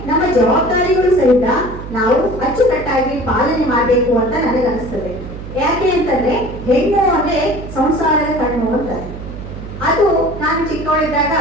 ನಮ್ಮ ಜವಾಬ್ದಾರಿಗಳು ಸಹಿತ ನಾವು ಅಚ್ಚುಕಟ್ಟಾಗಿ ಪಾಲನೆ ಮಾಡಬೇಕು ಅಂತ ನನಗೆ ಅನಿಸ್ತದೆ. ಯಾಕೆ ಅಂತಂದ್ರೆ, ಹೆಣ್ಣು ಅಂದ್ರೆ ಸಂಸಾರದ ಕಣ್ಣು ಅಂತಾರೆ. ಅದು ನಾನು ಚಿಕ್ಕವಳಿದ್ದಾಗ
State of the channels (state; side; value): noise; right; hum, 11 dB below the sound